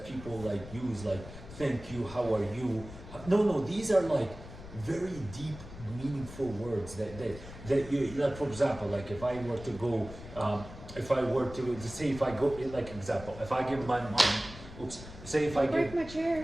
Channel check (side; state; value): left; noise; rumble, 14 dB below the sound